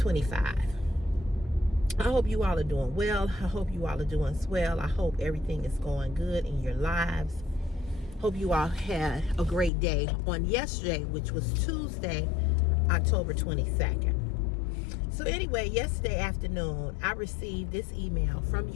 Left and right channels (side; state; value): right; drops out; at 9.7 s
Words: I hope you all are doing well. I hope you all are doing swell. I hope everything is going good in your lives. Hope you all had a great day on yesterday, which was Tuesday, October 22nd. So anyway, yesterday afternoon, I received this email from